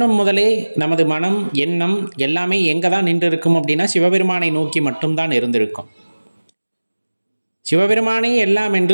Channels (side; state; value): both; inverted; correlation -1.00